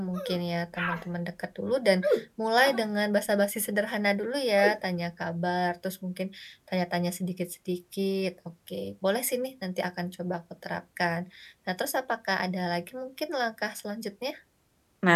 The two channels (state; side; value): identical; both; correlation 1.00